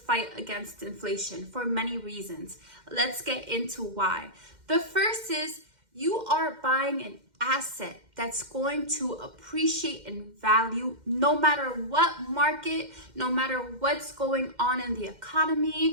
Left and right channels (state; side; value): late; left; 2.1 ms